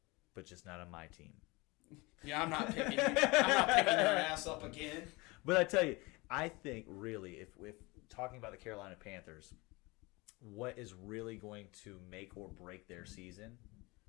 but just not on my team. Yeah, I'm not picking you. I'm not picking your ass up again. But I tell you, I think really, if talking about the Carolina Panthers, what is really going to make or break their season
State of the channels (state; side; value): quieter; right; 24.4 dB